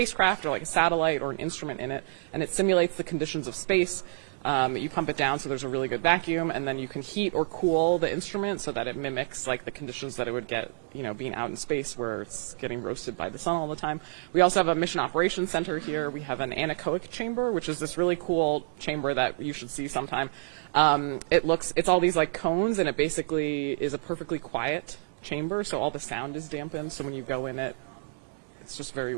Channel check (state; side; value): silent; left; digital silence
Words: or like a satellite or an instrument in it, and it simulates the conditions of space. You pump it down so there's a really good vacuum, and then you can heat or cool the instrument so that it mimics like the conditions that it would get, being out in space where it's getting roasted by the sun all the time. We also have a mission operations center here. We have an anechoic chamber, which is this really cool chamber that you should see sometime. It's all these like cones, and it basically is a perfectly quiet chamber, so all the sound is dampened. So when you go in it, it's just very